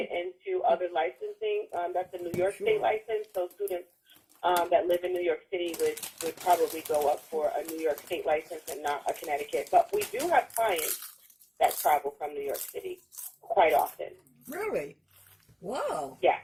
into other licensing. That's a New York State license, so students that live in New York City would probably go up for a New York State license and not a Connecticut. But we do have clients that travel from New York City quite often. Really? Wow. Yeah.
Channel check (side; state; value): both; identical; correlation 1.00